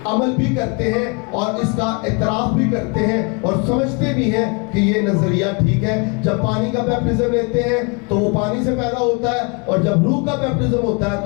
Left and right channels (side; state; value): right; quieter; 32.5 dB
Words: عمل بھی کرتے ہیں اور اس کا اعتراف بھی کرتے ہیں، اور سمجھتے بھی ہیں کہ یہ نظریہ ٹھیک ہے۔ جب پانی کا بیپٹزم لیتے ہیں تو وہ پانی سے پیدا ہوتا ہے، اور جب روح کا بیپٹزم ہوتا ہے